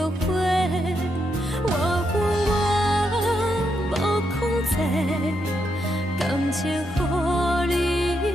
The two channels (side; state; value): both; normal; correlation 0.81